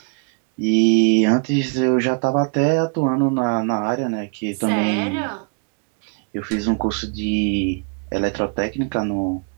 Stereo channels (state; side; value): quieter; left; 37.9 dB